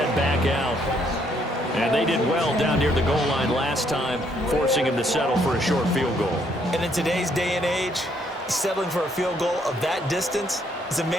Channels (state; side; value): normal; both; correlation 0.70